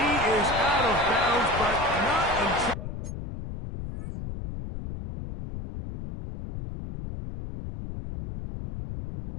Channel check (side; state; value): left; noise; rumble, 8 dB below the sound